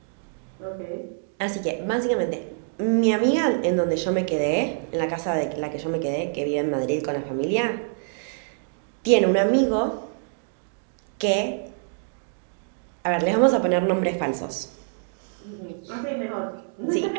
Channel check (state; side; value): silent; left; digital silence